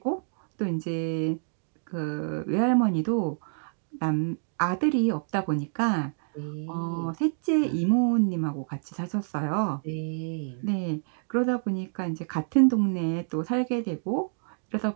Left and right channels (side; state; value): left; silent; digital silence